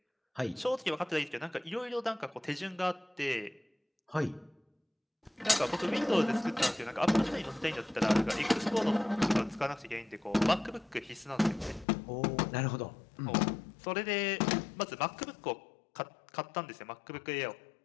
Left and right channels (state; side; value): drops out; right; at 11.9 s